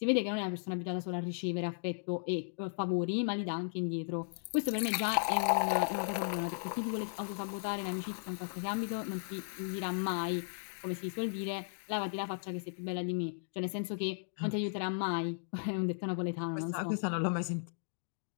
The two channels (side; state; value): right; silent; digital silence